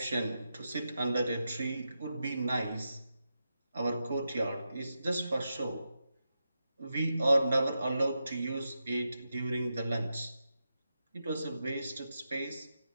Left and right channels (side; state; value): both; inverted; correlation -0.88